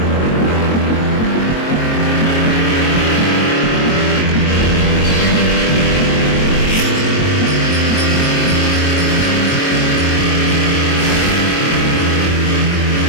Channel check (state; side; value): late; right; 22 ms